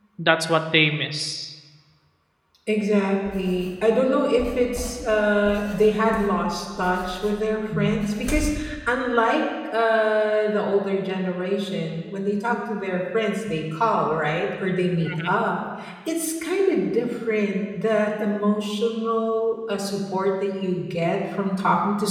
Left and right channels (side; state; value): both; identical; correlation 1.00